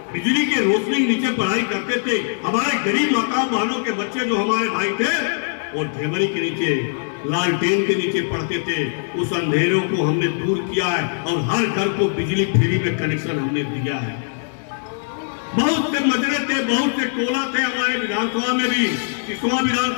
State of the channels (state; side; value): silent; right; digital silence